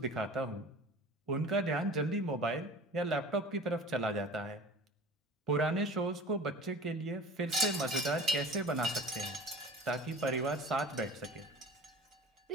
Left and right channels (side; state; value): both; normal; correlation 0.40